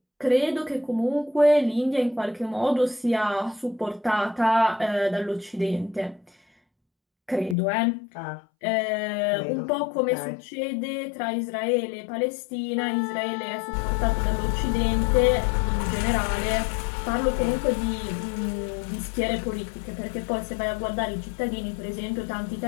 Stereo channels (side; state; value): right; drops out; at 7.6 s